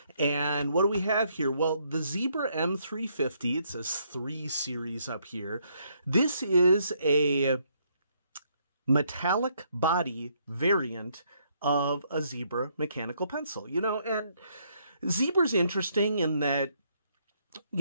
And what do we have here? Well, the Zebra M350, it says 3 series up here. This is a metallic body variant of a Zebra mechanical pencil, and Zebra's interesting in that,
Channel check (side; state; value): both; inverted; correlation -0.72